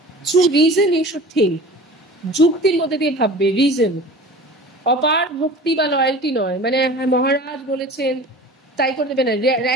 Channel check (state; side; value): normal; both; correlation 0.40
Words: through reason you should think, যুক্তির মধ্যে দিয়ে ভাববে, রিজন, অপার ভক্তি বা লয়্যালটি নয়, মানে মহারাজ বলেছেন তাই করে দেবে না,